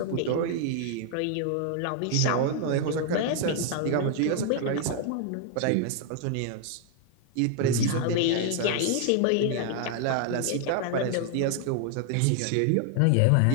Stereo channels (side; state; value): both; different; correlation 0.00